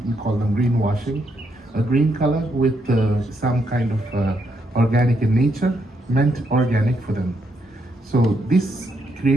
call them greenwashing. A green color with some kind of organic in nature meant organic for them. So this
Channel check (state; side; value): normal; both; correlation 0.77